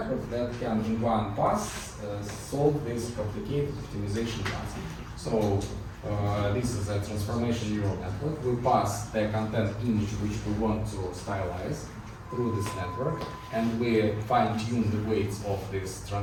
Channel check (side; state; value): both; identical; correlation 1.00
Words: that can, in one pass, solve this complicated optimization task. So, this is a transformation neural network. We pass the content image which we want to stylize through this network, and we fine-tune the weights of this